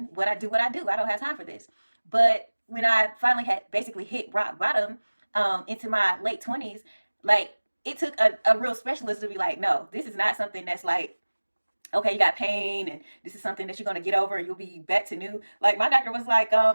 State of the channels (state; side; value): inverted; both; correlation -1.00